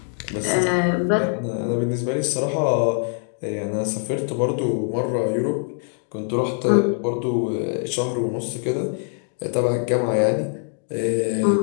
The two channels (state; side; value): silent; right; 58 dB below the other